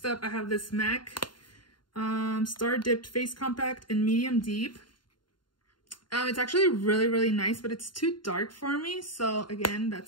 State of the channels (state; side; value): late; right; 0.71 ms